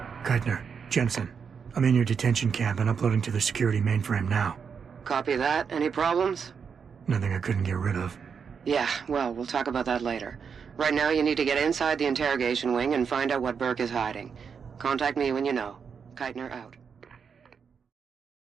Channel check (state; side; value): quieter; left; 6.4 dB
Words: Keitner, Jensen, I'm in your detention camp and uploading to the security mainframe now. Copy that. Any problems? Nothing I couldn't get rid of. Yeah, well, we'll talk about that later. Right now, you need to get inside the interrogation wing and find out what Burke is hiding. Contact me when you know. Keitner out.